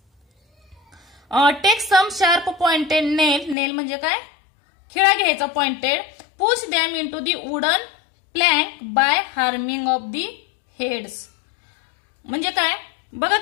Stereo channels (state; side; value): drops out; right; at 3.6 s